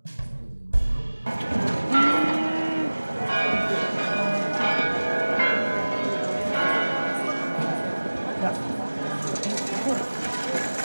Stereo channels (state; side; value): inverted; both; correlation -1.00